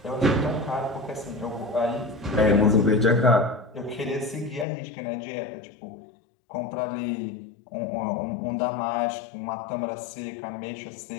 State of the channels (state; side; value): drops out; right; at 4.7 s